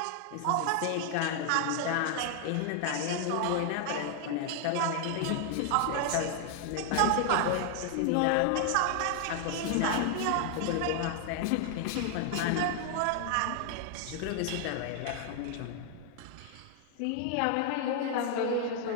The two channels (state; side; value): different; both; correlation 0.00